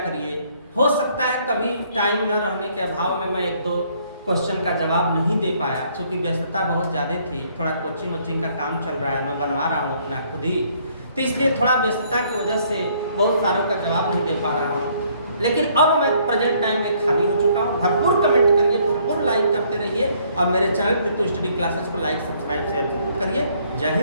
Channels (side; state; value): both; inverted; correlation -0.65